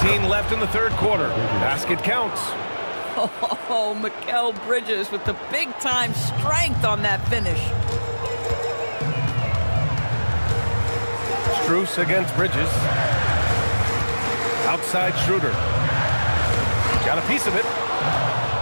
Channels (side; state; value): both; inverted; correlation -1.00